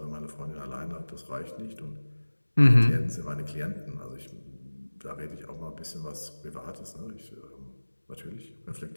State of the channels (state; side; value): inverted; both; correlation -1.00